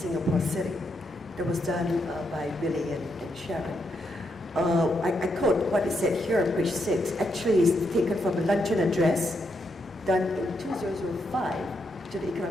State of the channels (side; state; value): both; normal; correlation 0.80